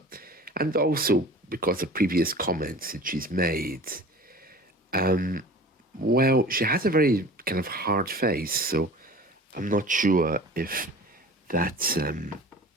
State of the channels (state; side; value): normal; both; correlation 0.41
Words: and also because of previous comments that she's made. Well, she has a very kind of hard face, so I'm not sure if that's